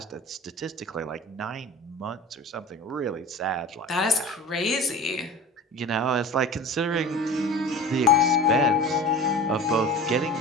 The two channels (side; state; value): both; normal; correlation 0.36